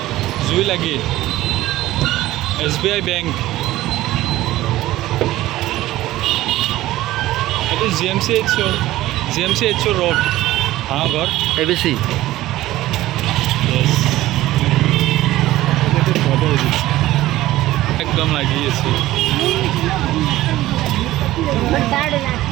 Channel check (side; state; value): left; quieter; 16.0 dB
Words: জুই লাগি। SBI বেংক, এইটো GMCH ৰোড, ঘৰ ABC। একদম লাগি আছে,